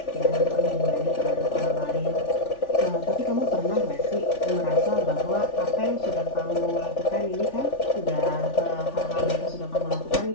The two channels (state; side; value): late; right; 3.4 ms